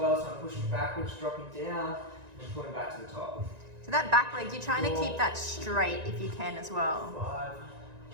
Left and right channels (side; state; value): left; late; 1.9 ms